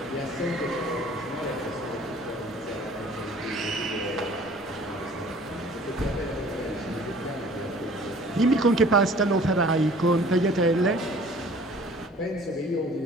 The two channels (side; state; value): both; normal; correlation 0.50